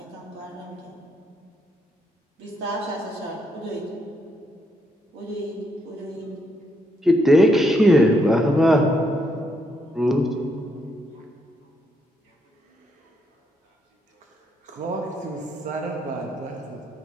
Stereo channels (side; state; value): both; normal; correlation 0.76